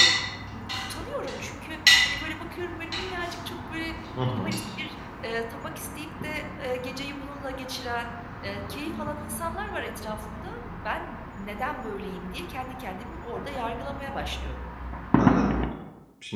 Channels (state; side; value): identical; both; correlation 1.00